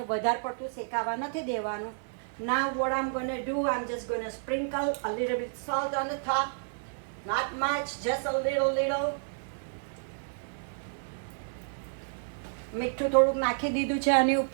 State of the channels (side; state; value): left; silent; 57 dB below the other